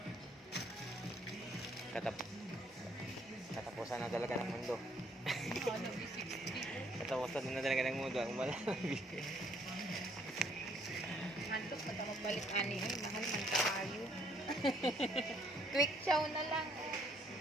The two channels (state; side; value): normal; both; correlation 0.65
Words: Katapusan na talaga ng mundo. Ano, 60. Katapusan na talaga ng mundo. Ang wala na bigay. Hantok, ba't ako balik ani? Ay, mahal man kayo. Quick chow na lang.